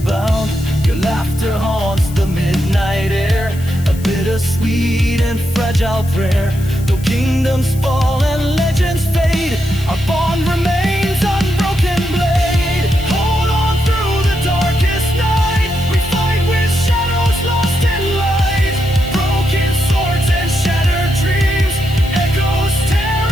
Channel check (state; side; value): noise; left; hiss, 18 dB below the sound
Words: bound. Your laughter haunts the midnight air, a bittersweet and fragile prayer. Though kingdoms fall and legends fade, our bond remains unbroken blade. Hold on through the darkest night, we fight with shadows lost in light. Broken swords and shattered dreams, echoes